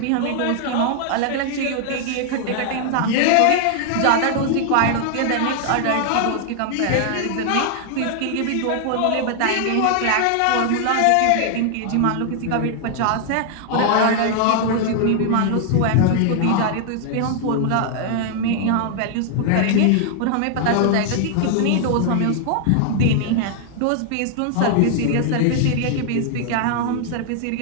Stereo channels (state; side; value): different; both; correlation 0.00